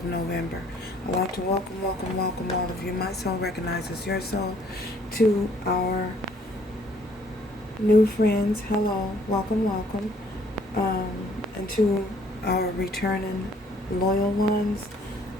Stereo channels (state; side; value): normal; both; correlation 0.62